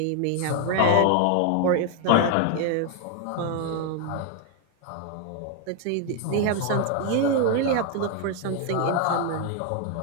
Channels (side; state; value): both; different; correlation 0.00